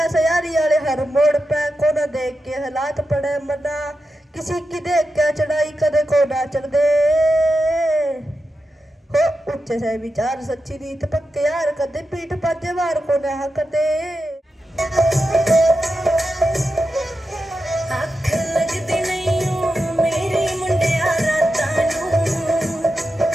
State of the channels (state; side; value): normal; both; correlation 0.89